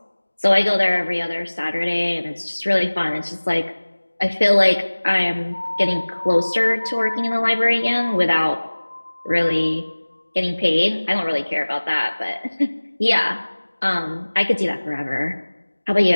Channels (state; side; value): inverted; both; correlation -1.00